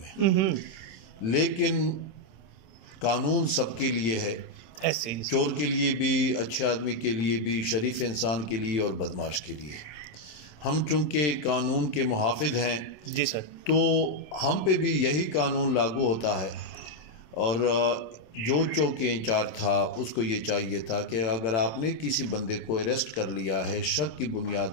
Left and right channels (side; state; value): right; late; 27 ms